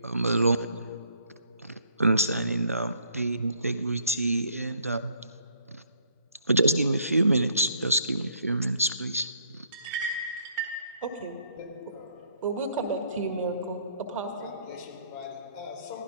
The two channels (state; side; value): inverted; both; correlation -0.65